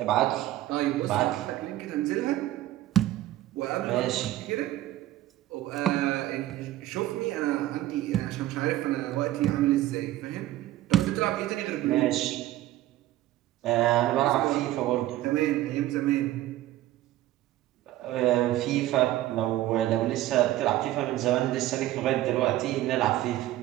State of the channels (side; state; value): left; quieter; 14.8 dB